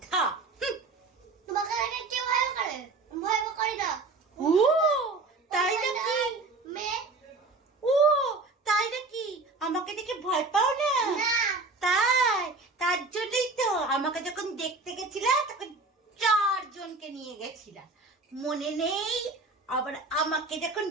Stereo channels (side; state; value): left; quieter; 3.6 dB